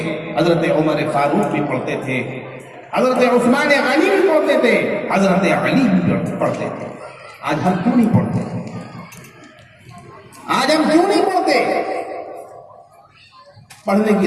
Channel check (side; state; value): both; identical; correlation 1.00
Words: حضرت عمر فاروق بھی پڑھتے تھے، حضرت عثمان غنی بھی پڑھتے تھے، حضرت علی بھی پڑھتے تھے۔ آج ہم کیوں نہیں پڑھتے؟ آج ہم کیوں نہیں پڑھتے؟ پڑھنے کی